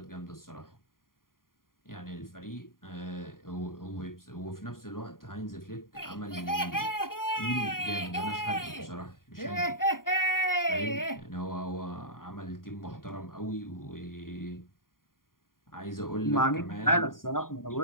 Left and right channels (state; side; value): late; right; 0.91 ms